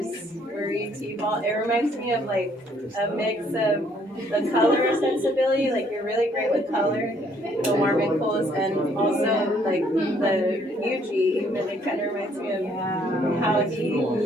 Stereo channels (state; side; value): normal; both; correlation 0.65